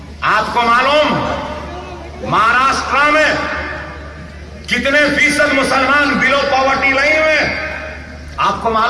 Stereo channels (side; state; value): both; identical; correlation 1.00